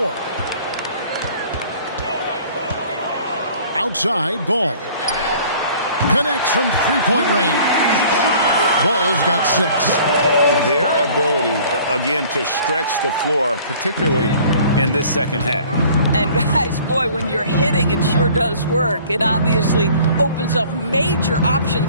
Outside, Ball. Connects from three-point range. Ball's got 6. Their ability, again, to stretch the floor, particularly in this second half. And guys, boy, when you're hitting, it sure does work. It obviously opens up major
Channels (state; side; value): inverted; both; correlation -0.51